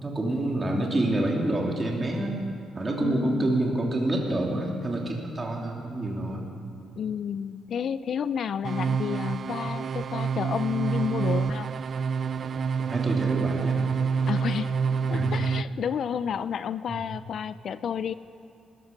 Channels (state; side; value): normal; both; correlation 0.79